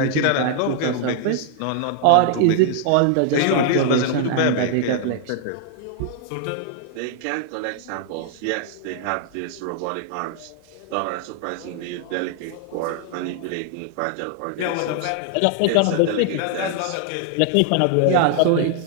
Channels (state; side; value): different; both; correlation 0.00